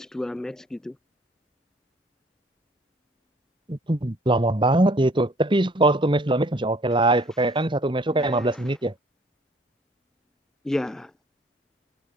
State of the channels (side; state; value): both; normal; correlation 0.57